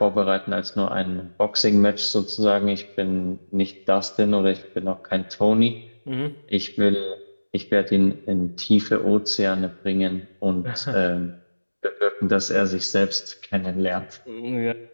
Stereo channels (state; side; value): inverted; both; correlation -1.00